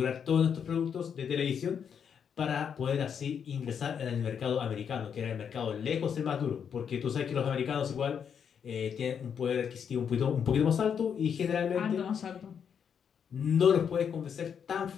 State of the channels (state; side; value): quieter; right; 7.5 dB